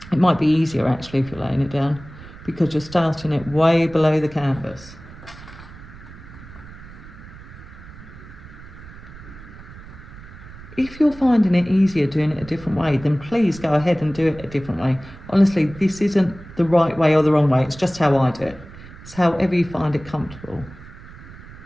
it might be easier actually if you're laying it down because you're starting it way below the canvas. If you're finding it easier doing it a different way, then please go ahead and do it a different way. Honestly, this isn't the right way or the wrong way. It's just how I do it. It's however you find it comfortable.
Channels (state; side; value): noise; right; rumble, 17 dB below the sound